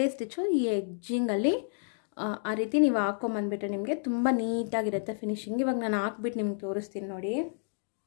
ಸ್ಟಿಚ್ಚು ಈ ಎಡ್ಜಿಂಗಲ್ಲಿ ಆ ರೀತಿ ನೀವು ಹಾಕೊಂಬಂದ್ಬಿಟ್ರೆ ನಿಮಗೆ ತುಂಬ ನೀಟಾಗಿರುತ್ತೆ ಫಿನಿಶಿಂಗ್. ಇವಾಗ ನಾನು ಹಾಕ್ಬಿಟ್ಟು ನಿಮ್ಗೆ ತೋರಿಸ್ತೀನಿ ನೋಡಿ.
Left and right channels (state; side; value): silent; right; digital silence